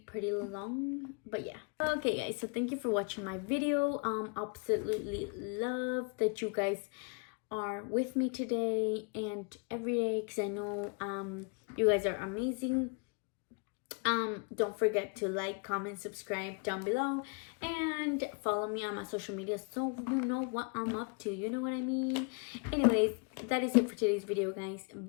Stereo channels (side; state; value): right; quieter; 37.2 dB